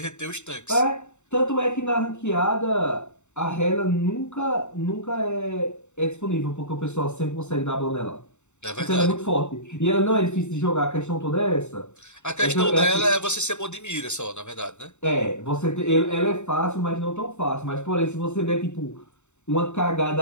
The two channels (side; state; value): right; late; 0.83 ms